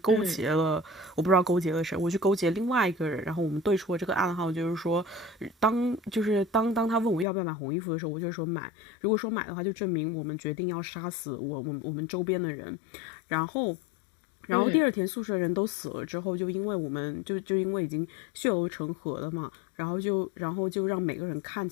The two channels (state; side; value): drops out; right; at 7.2 s